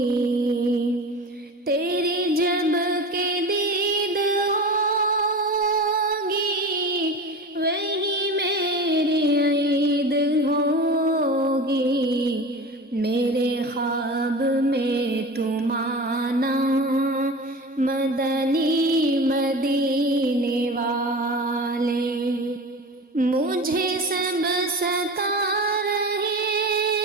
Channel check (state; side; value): normal; both; correlation 0.32